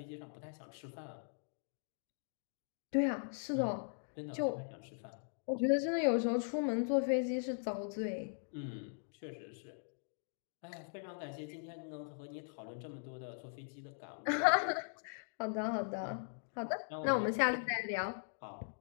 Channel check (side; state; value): right; silent; digital silence